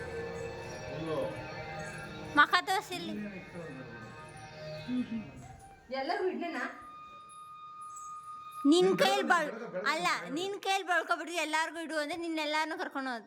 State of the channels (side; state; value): both; identical; correlation 1.00